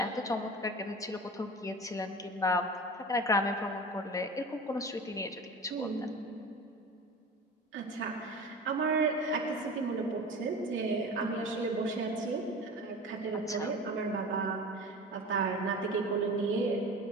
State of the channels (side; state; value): both; normal; correlation 0.34